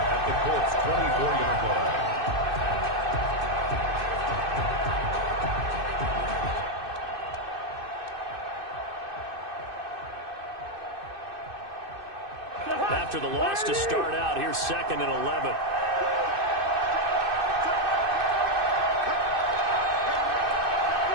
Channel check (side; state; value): left; late; 2.6 ms